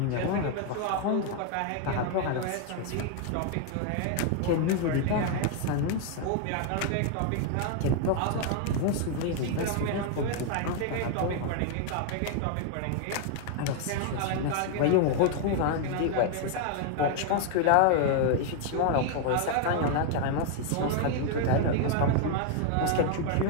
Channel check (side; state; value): both; different; correlation 0.00